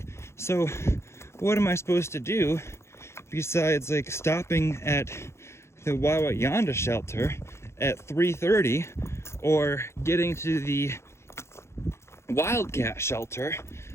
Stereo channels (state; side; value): late; right; 0.13 ms